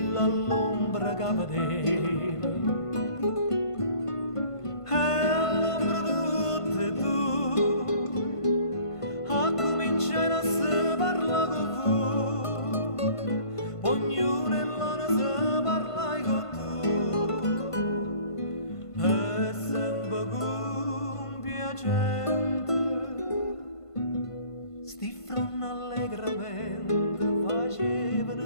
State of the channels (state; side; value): late; right; 1.5 ms